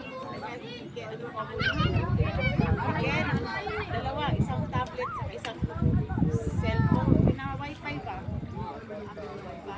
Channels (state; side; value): identical; both; correlation 1.00